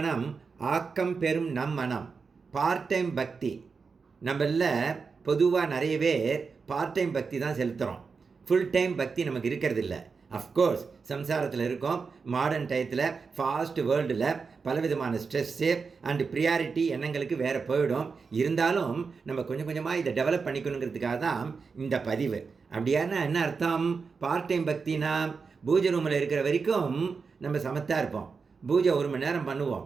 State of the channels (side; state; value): left; quieter; 5.1 dB